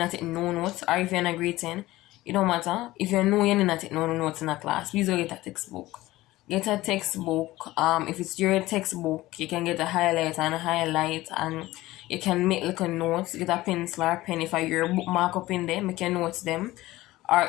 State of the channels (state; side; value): quieter; right; 17.6 dB